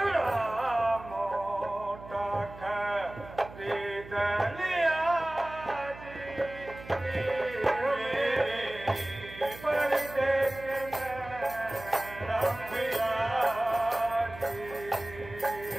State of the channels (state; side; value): noise; right; hum, 16 dB below the sound